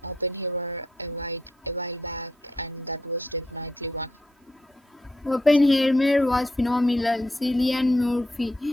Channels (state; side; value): normal; both; correlation 0.79